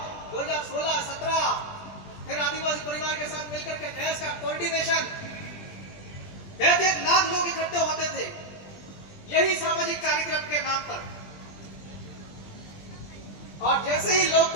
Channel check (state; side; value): late; right; 20 ms